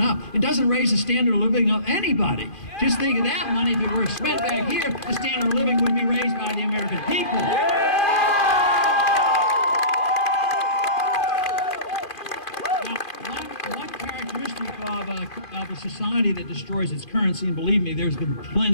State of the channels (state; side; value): late; right; 2.5 ms